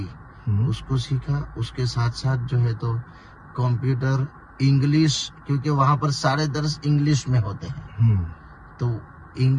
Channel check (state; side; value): identical; both; correlation 1.00